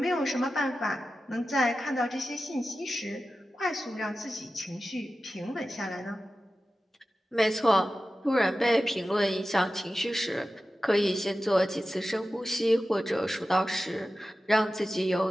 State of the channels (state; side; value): normal; both; correlation 0.94